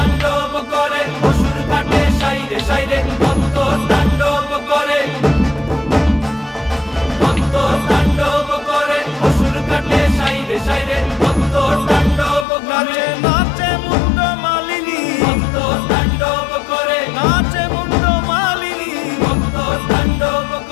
করে অসুর কাটে সাইরে সাইরে, মত্ত তাণ্ডব করে, মত্ত তাণ্ডব করে অসুর কাটে সাইরে সাইরে, মত্ত তাণ্ডব করে। নাচে মুন্ড মালিনী, মত্ত তাণ্ডব করে, নাচে মুন্ড মালিনী। মত্ত তাণ্ডব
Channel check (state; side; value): drops out; right; at 12.5 s